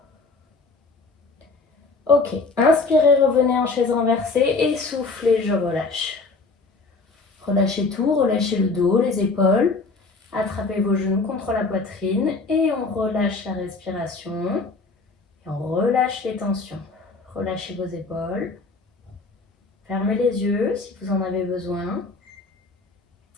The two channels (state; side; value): quieter; right; 3.8 dB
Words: Ok, inspirez, revenez en chaise renversée et soufflez, je relâche. Relâchez tout, relâchez le dos, les épaules. Attrapez vos genoux contre la poitrine et on relâche la respiration. Et on relâche les tensions. Relâchez vos épaules. Fermez les yeux si vous en avez besoin.